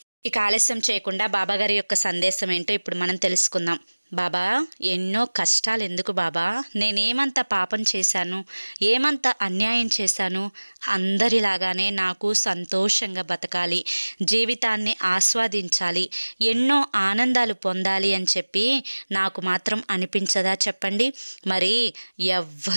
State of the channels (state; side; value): inverted; both; correlation -1.00